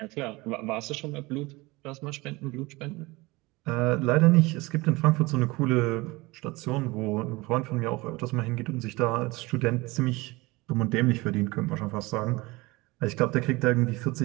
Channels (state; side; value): quieter; left; 22.7 dB